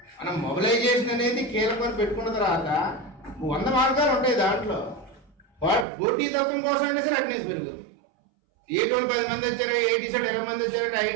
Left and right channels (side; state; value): left; drops out; at 5.9 s